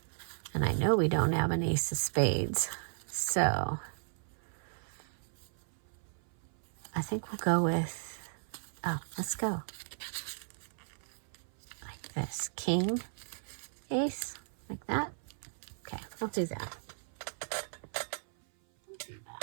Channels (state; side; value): silent; left; 54 dB below the other